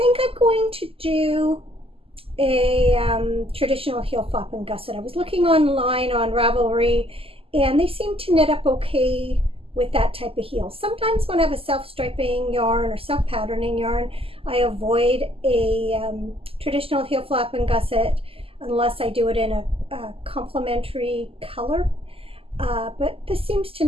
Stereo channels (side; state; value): left; late; 0.27 ms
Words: I'm going to do a traditional heel flap and gusset. I was looking online on Ravelry, and they seem to knit up okay with that type of heel. Sometimes when I have a self-striping yarn or self-patterning yarn, I avoid a traditional heel flap and gusset unless I do it in a complementary color. But this seems to